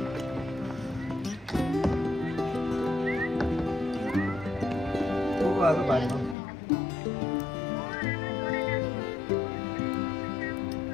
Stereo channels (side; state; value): right; drops out; at 6.4 s